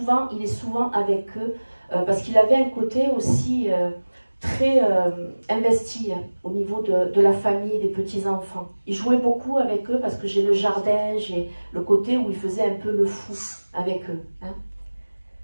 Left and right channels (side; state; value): both; inverted; correlation -1.00